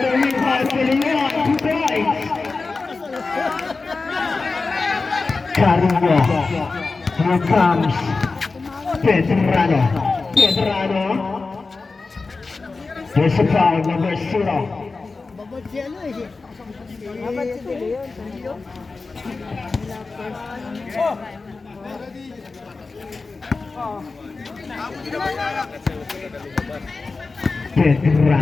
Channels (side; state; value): right; quieter; 4.0 dB